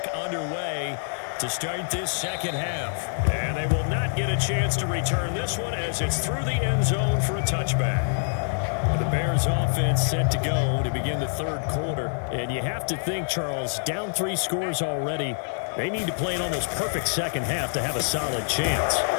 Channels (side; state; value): right; silent; digital silence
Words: underway to start this second half. And they will not get a chance to return this one as it's through the end zone for a touchback. The Bears offense set to go to begin the third quarter. And you have to think, Charles, down 3 scores already. They need to play an almost perfect second half to have a solid chance.